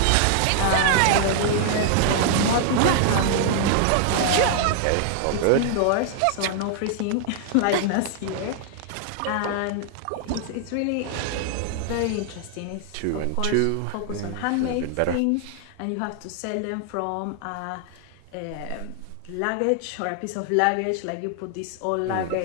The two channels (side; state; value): both; different; correlation 0.00